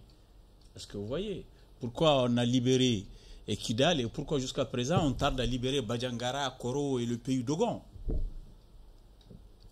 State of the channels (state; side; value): identical; both; correlation 1.00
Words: Est-ce que vous voyez pourquoi on a libéré Kidal et pourquoi jusqu'à présent on tarde à libérer Badjangara, Koro et le pays d'Ogon?